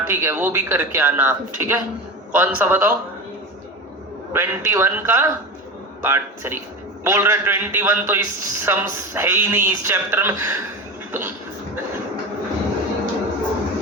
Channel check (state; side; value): normal; both; correlation 0.26